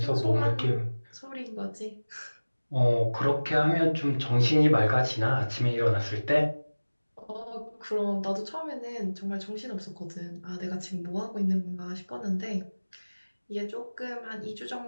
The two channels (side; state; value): both; inverted; correlation -1.00